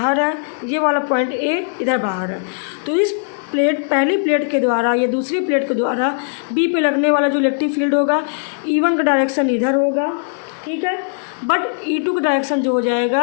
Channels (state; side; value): silent; right; 67 dB below the other